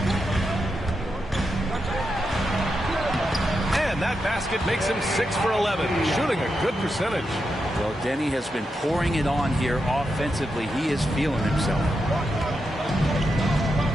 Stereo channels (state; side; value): normal; both; correlation 0.86